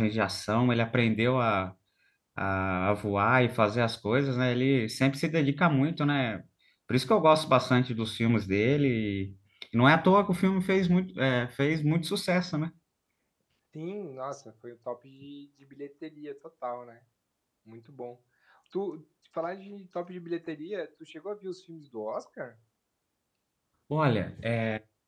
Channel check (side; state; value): both; identical; correlation 1.00